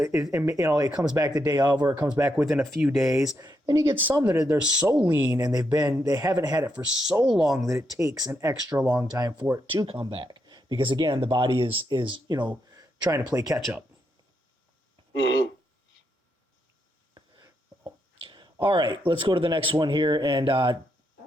comes back the day of, or it comes back within a few days. Then you get some that they're so lean and they haven't had it for so long that it takes an extra long time for it to come back. Because again, the body is trying to play catch up. Mm-hmm. All right, let's go to the next one here. And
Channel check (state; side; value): normal; both; correlation 0.80